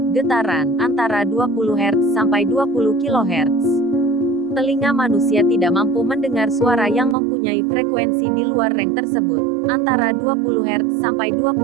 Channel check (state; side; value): drops out; left; at 7.2 s